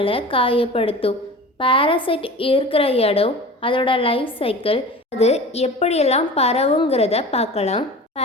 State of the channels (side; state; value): both; normal; correlation 0.36